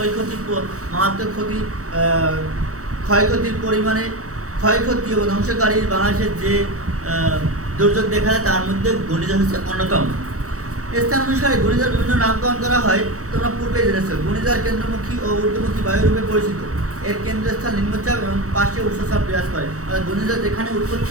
ক্ষতি ক্ষয়ক্ষতির পরিমাণে ক্ষয়ক্ষতি এবং ধ্বংসকারী বাংলাদেশের যে দুর্যোগ দেখা যায় তার মধ্যে ঘূর্ণিঝড় হচ্ছে অন্যতম। স্থান অনুসারে ঘূর্ণিঝড় বিভিন্ন নামকরণ করা হয়, তোমরা পূর্বে জেনেছ। ঘূর্ণিঝড় কেন্দ্রমুখী ও ঊর্ধ্বমুখী বায়ুরূপে পরিচিত। এর কেন্দ্রস্থল নিম্নচাপ এবং পাশে উচ্চচাপ বিরাজ করে। অর্থাৎ ঘূর্ণিঝড় যেখানে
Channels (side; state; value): left; late; 0.65 ms